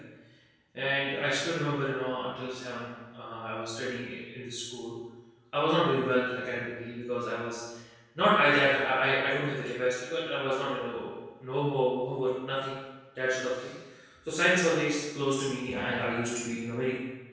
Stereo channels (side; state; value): both; identical; correlation 1.00